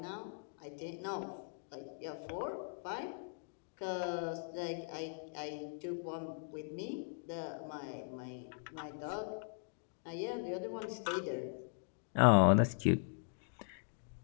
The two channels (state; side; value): silent; right; digital silence